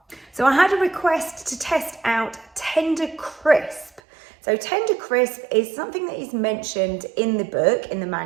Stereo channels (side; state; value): left; drops out; at 4.0 s